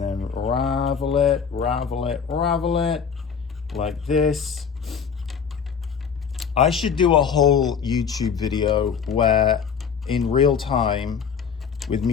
then ravel it, ravel it, ravel it, like this. I should do a whole YouTube video where in real time with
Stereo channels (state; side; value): quieter; right; 6.7 dB